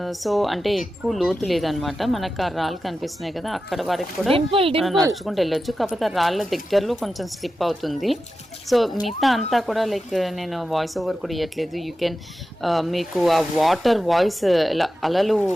సో అంటే ఎక్కువ లోతు లేదనమాట. మనకు ఆ రాళ్ళు కనిపిస్తున్నాయి కదా, అక్కడ వరకు కూడా నడుచుకుంటూ వెళ్ళొచ్చు. కాకపోతే ఆ రాళ్ళ దగ్గరలో కొంచెం స్లిప్ అవుతుంది. సో మిగతా అంతా కూడా లైక్ నేను వాయిస్ ఓవర్ కూడా ఇవ్వట్లేదు. యూ కెన్ మీకు ఆ వాటర్ వాయిస్ ఇలా అలలు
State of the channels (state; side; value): normal; both; correlation 0.92